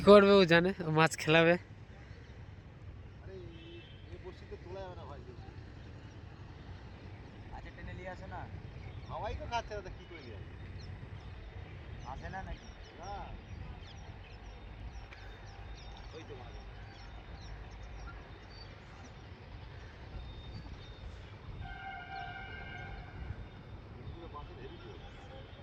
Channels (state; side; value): identical; both; correlation 1.00